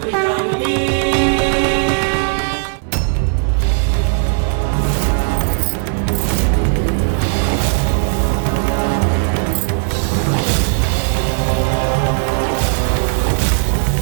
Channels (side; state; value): left; silent; digital silence